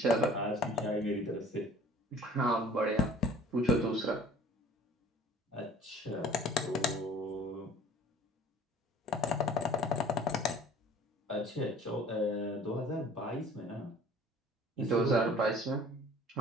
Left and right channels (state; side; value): normal; both; correlation 0.49